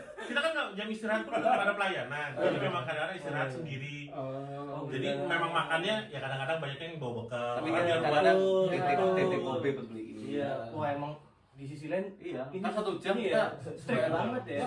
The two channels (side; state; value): both; identical; correlation 1.00